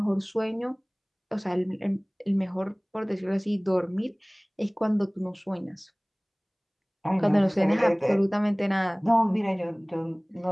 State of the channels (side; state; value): both; identical; correlation 1.00